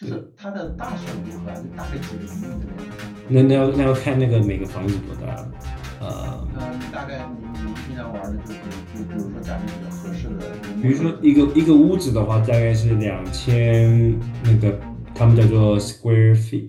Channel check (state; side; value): identical; both; correlation 1.00